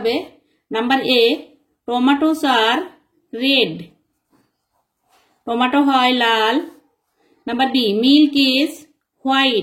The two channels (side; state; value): both; identical; correlation 1.00